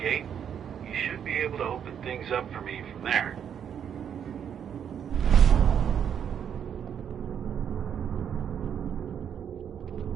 You should be able to open things up for me from there.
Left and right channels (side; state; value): left; quieter; 8.4 dB